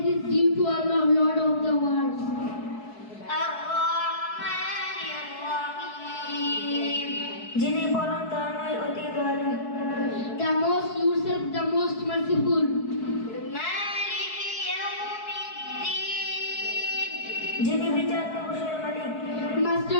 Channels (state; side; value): late; right; 4.7 ms